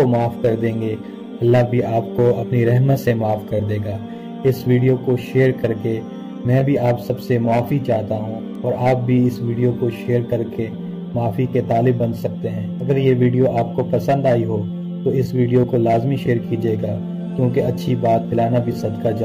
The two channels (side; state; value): both; identical; correlation 1.00